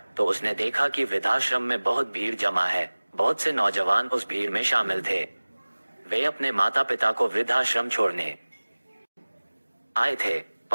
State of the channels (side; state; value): both; inverted; correlation -1.00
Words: तो उसने देखा कि वृद्धाश्रम में बहुत भीड़ जमा है। बहुत से नौजवान उस भीड़ में शामिल थे। वे अपने माता पिता को वृद्धाश्रम छोड़ने आए थे।